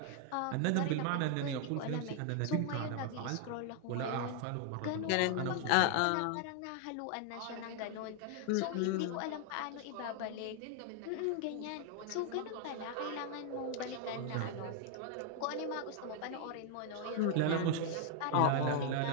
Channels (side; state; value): both; different; correlation 0.00